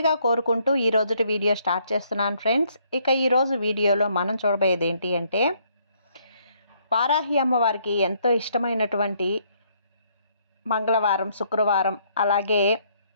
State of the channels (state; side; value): inverted; both; correlation -0.69